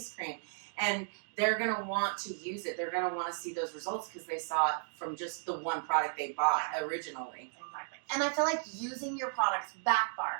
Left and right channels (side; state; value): left; silent; digital silence